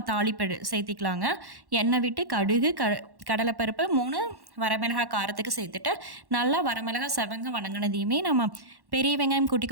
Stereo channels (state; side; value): late; left; 1.1 ms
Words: தாளிப்பு சேர்த்திக்கலாங்க. எண்ணெய் விட்டு கடுகு கடலைப்பருப்பு 3 வரமிளகாய் காரத்துக்கு சேர்த்துட்டு நல்லா வரமிளகாய் செவங்க வணங்கினதையுமே நம்ம பெரிய வெங்காயம் குட்டி